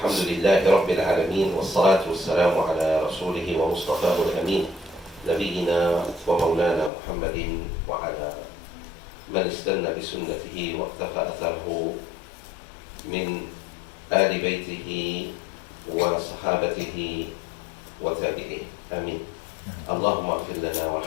لله رب العالمين والصلاة والسلام على رسوله ومصطفاه الأمين نبينا ومولانا محمد وعلى من استنى بسنته واقتفى أثره من آل بيته وصحابته وتابعيه آمين. اللهم اغفر لنا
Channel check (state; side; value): drops out; right; at 6.9 s